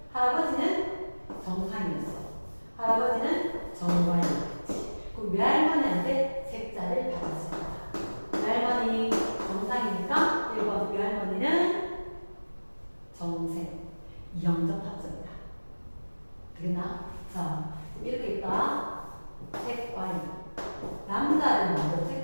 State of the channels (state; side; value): inverted; both; correlation -1.00